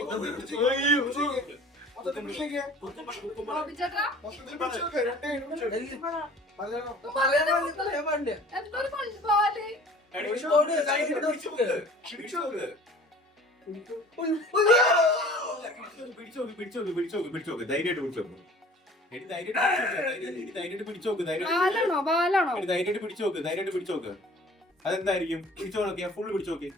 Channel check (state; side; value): normal; both; correlation 0.48